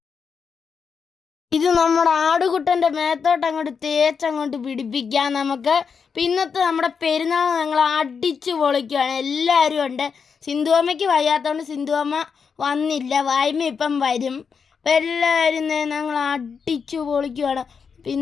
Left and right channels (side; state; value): right; quieter; 6.0 dB